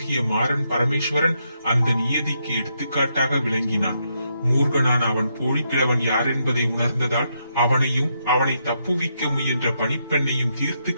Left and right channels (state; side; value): inverted; both; correlation -0.79